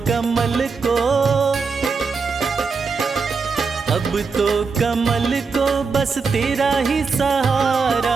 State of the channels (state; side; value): quieter; left; 4.9 dB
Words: कमल को, अब तो कमल को बस तेरा ही